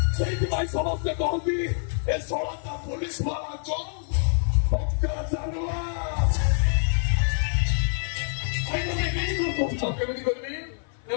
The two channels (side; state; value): right; silent; 61 dB below the other